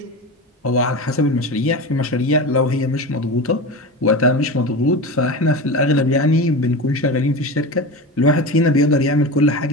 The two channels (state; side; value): normal; both; correlation 0.25